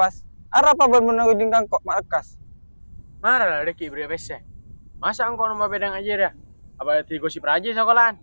Ada apa ben menunggu kok makas? Marah lah deki beri pese. Masa engkau numpak peda ngajar ya? Apa tigo si praja sekolahan?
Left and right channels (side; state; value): both; inverted; correlation -1.00